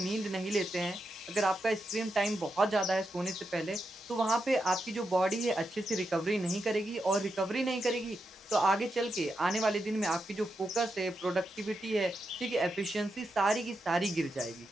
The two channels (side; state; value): both; normal; correlation 0.86